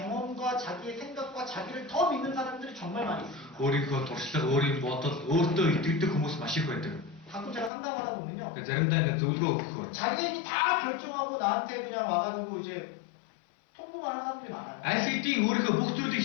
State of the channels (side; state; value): right; drops out; at 7.7 s